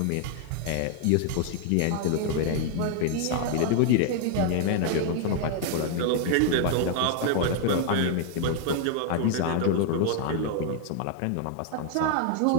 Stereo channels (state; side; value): different; both; correlation 0.00